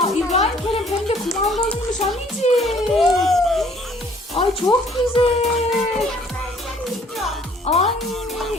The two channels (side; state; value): both; normal; correlation 0.58